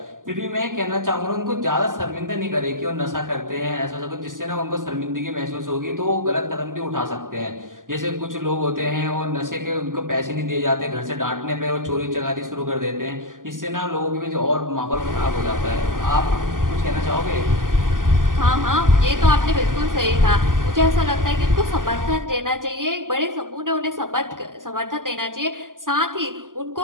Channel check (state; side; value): late; left; 0.89 ms